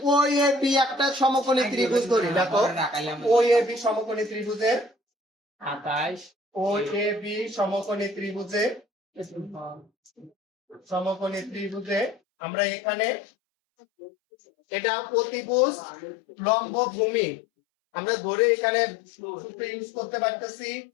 ও এ বি একটা সমকোণী ত্রিভুজ ধরি, দেখো ও এ বি সমকোণী ত্রিভুজের 28 ও এ বি সমকোণী ত্রিভুজে আমরা এখানে এটা অতিভুজ লম্ব ভূমি আমরা ধরে এখানে সূত্র ইউজ করতে পারতেছি,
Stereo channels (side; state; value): right; drops out; at 12.2 s